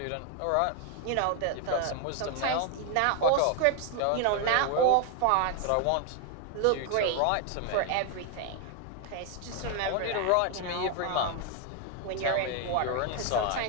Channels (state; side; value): different; both; correlation 0.01